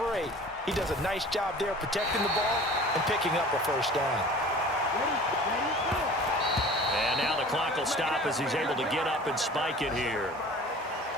He does a nice job there protecting the ball and picking up a first down. And now the clock will stop as he's able to get up and spike it here.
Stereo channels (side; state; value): both; normal; correlation 0.43